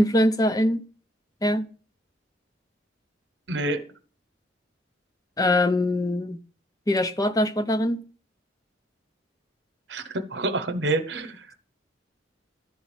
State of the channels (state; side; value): normal; both; correlation 0.65